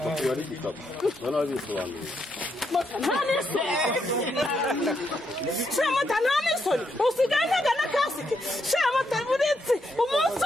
akaba ari igikapu? Bana babisobanuye. Mota nta n'isoni. Mota nta n'isoni. Usigaye ntagana kasike. Mota buretse umunsi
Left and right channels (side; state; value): both; normal; correlation 0.79